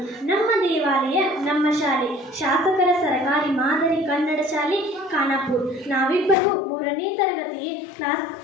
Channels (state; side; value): drops out; right; at 6.4 s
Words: ನಮ್ಮ ದೇವಾಲಯ ನಮ್ಮ ಶಾಲೆ, ಶಾಸಕರ ಸರಕಾರಿ ಮಾದರಿ ಕನ್ನಡ ಶಾಲೆ ಖಾನಾಪುರ. ನಾವಿಬ್ಬರು 3ನೇ ತರಗತಿಗೆ